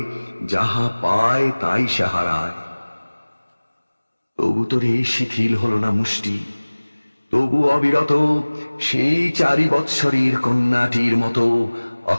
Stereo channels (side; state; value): both; inverted; correlation -1.00